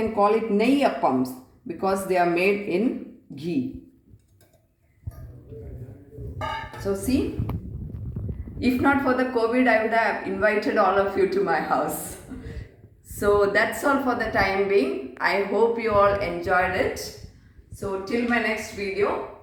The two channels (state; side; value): identical; both; correlation 1.00